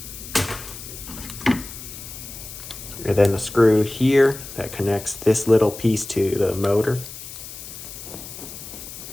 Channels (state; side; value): noise; left; hiss, 12 dB below the sound